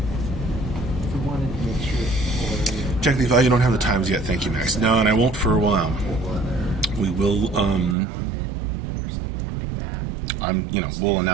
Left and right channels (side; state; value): left; drops out; at 8.0 s